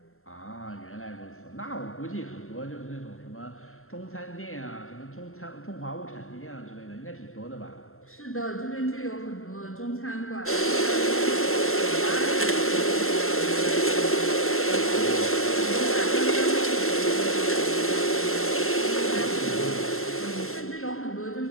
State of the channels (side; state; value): right; late; 0.62 ms